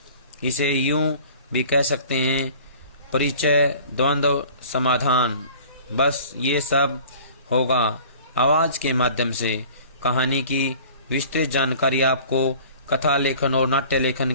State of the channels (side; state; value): both; inverted; correlation -0.46